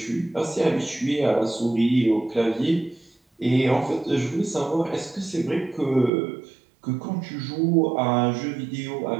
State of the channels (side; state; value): left; drops out; at 6.1 s